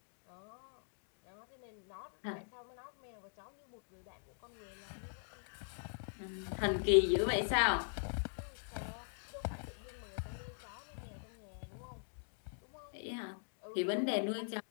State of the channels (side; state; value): right; silent; digital silence